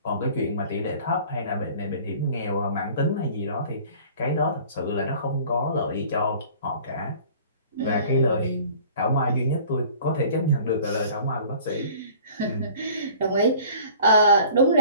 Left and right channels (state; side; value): inverted; both; correlation -0.48